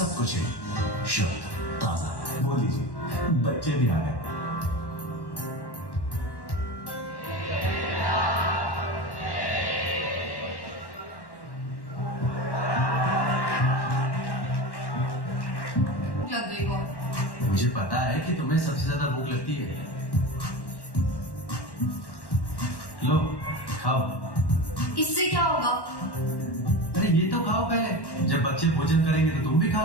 कुछ है शुद्ध ताजा। बोल लीजिए बच्चे भी आ गए। मुझे पता है कि तुम्हें सबसे ज्यादा भूख लगती है। लो खाओ। इससे क्या होगा? अरे ये तो खाओ पहले, जब बच्चे भोजन करेंगे तो तुम भी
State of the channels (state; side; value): late; right; 1.1 ms